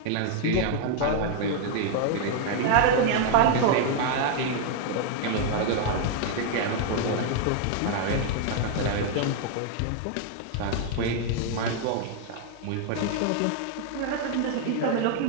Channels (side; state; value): both; different; correlation 0.00